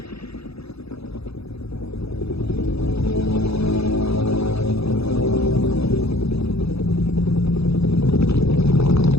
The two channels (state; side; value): late; right; 0.78 ms